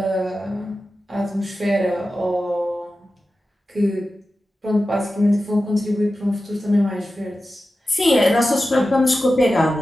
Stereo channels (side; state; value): both; normal; correlation 0.93